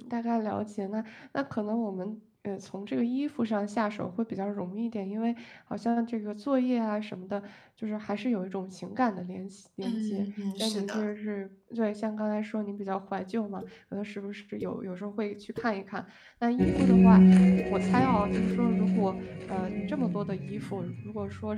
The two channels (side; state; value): both; identical; correlation 1.00